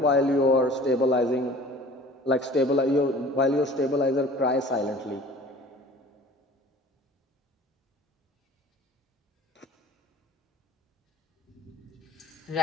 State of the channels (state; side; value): normal; both; correlation 0.46